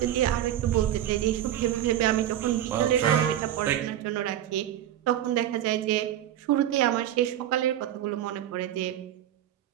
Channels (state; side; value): quieter; left; 11.8 dB